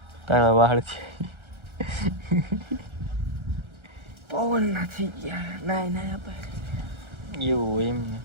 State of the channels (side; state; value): left; late; 1.4 ms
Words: તારા વાળ છે. પવન નથી ગયા. નાય નાય આપણે એવું હોય એમ ને.